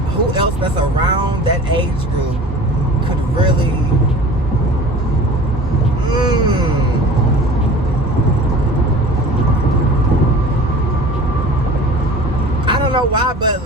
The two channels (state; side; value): normal; both; correlation 0.42